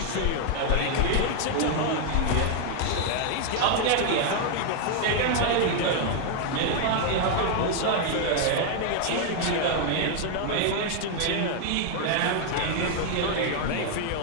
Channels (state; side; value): different; both; correlation 0.00